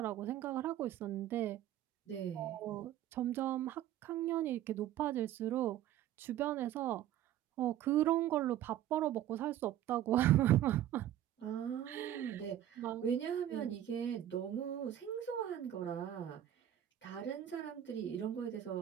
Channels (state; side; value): quieter; left; 11.9 dB